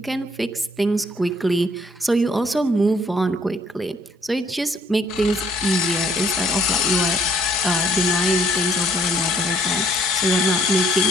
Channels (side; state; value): both; normal; correlation 0.63